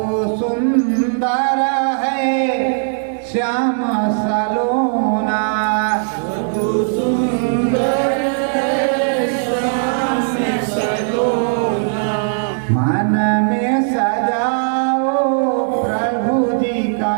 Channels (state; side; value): silent; left; digital silence